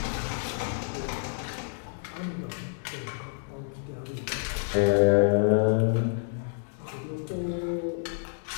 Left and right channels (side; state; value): right; silent; digital silence